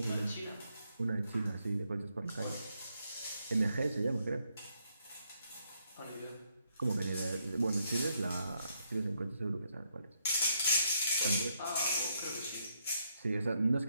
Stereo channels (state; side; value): inverted; both; correlation -0.76